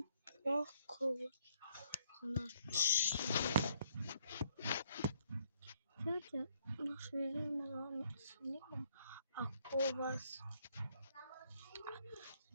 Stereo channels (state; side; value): inverted; both; correlation -0.68